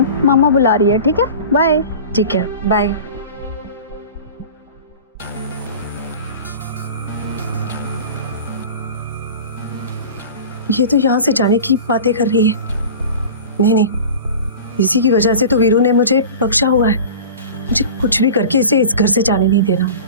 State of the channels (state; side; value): inverted; both; correlation -0.36